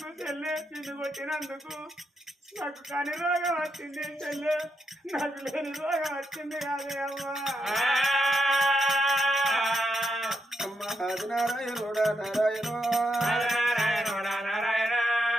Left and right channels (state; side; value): normal; both; correlation 0.82